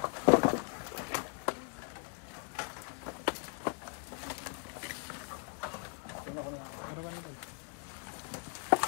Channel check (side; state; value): right; quieter; 38.8 dB